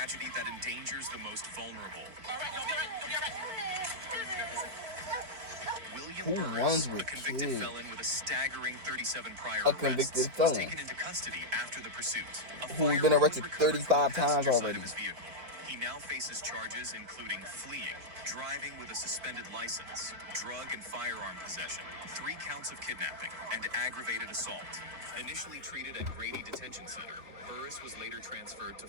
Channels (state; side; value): late; left; 4.6 ms